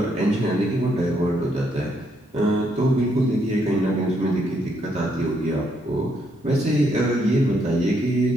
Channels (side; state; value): both; normal; correlation 0.74